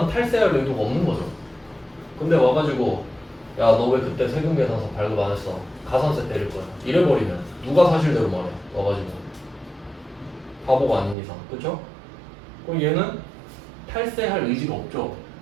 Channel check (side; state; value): left; drops out; at 11.2 s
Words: 탈세할 의도가 없는 거죠. 근데 와가지고 야, 너 왜 그때 세금 계산서 발급 안 했어? 가산세 때릴 거야. 이래버리면 누가 사실대로 말해? 와가지고 바보가 아닌 이상, 그쵸? 그럼 얘는 탈세할 의지가 없죠.